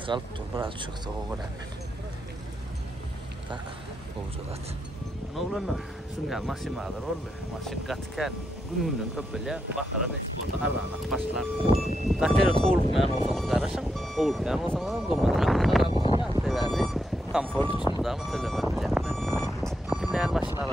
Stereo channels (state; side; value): normal; both; correlation 0.82